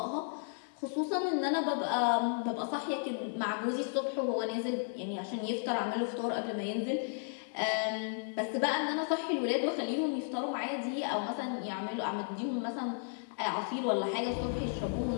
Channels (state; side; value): silent; right; digital silence